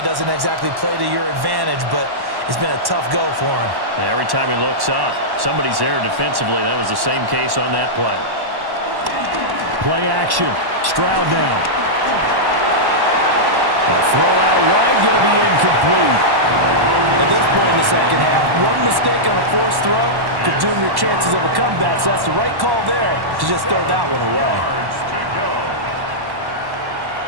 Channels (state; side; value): late; left; 1.1 ms